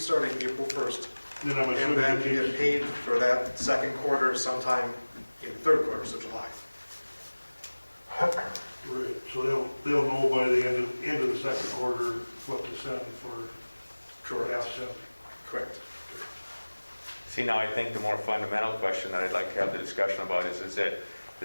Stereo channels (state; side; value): inverted; both; correlation -1.00